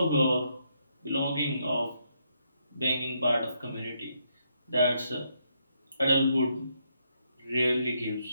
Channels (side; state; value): both; inverted; correlation -0.76